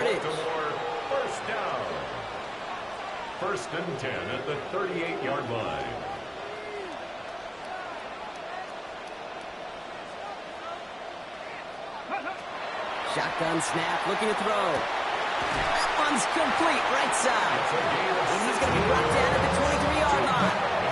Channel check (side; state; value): both; identical; correlation 1.00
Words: First down. 1st and 10 at the 38-yard line. Shotgun snap, looking to throw. That one's complete, right side. And he's going to be brought down at the 23-yard line.